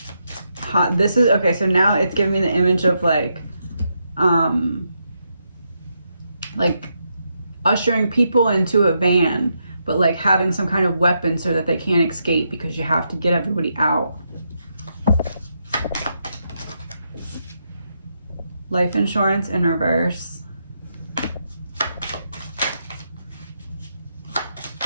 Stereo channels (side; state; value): both; inverted; correlation -0.81